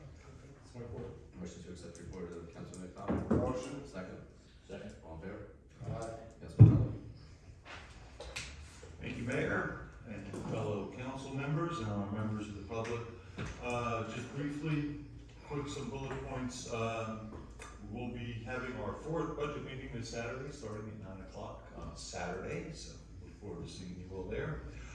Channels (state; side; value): identical; both; correlation 1.00